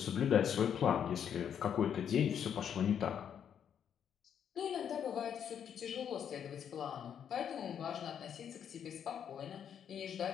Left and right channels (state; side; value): quieter; right; 8.5 dB